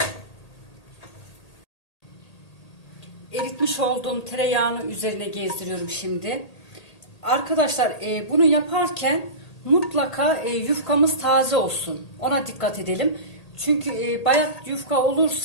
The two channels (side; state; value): right; late; 1.8 ms